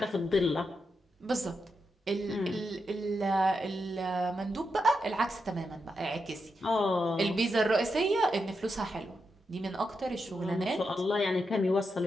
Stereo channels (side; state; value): both; normal; correlation 0.85